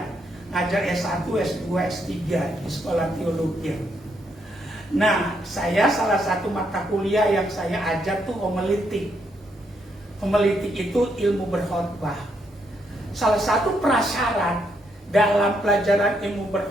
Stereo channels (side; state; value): both; normal; correlation 0.76